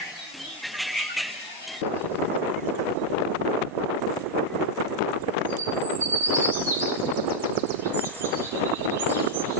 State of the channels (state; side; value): normal; both; correlation -0.01